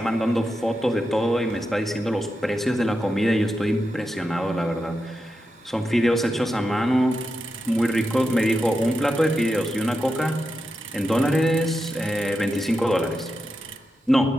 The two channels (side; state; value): both; normal; correlation 0.88